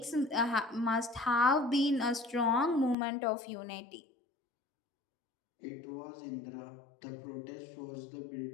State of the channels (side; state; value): right; drops out; at 3.0 s